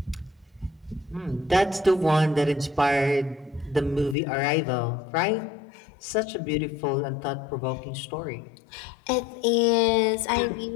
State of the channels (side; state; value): right; drops out; at 4.2 s